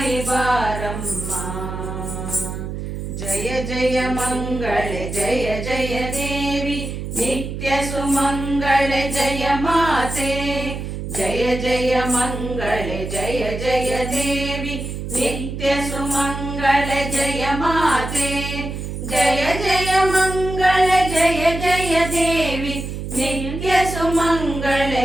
ಬಾರಮ್ಮ. ಜಯ ಜಯ ಮಂಗಳೆ ಜಯ ಜಯ ದೇವಿ ನಿತ್ಯ ಸುಮಂಗಳೆ ಜಯ ಮಾತೆ, ಜಯ ಜಯ ಮಂಗಳೆ ಜಯ ಜಯ ದೇವಿ ನಿತ್ಯ ಸುಮಂಗಳೆ ಜಯ ಮಾತೆ. ಜಯ ಜಯ ಮಂಗಳೆ ಜಯ ಜಯ ದೇವಿ ನಿತ್ಯ ಸುಮಂಗಳೆ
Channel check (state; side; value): noise; right; hum, 6 dB below the sound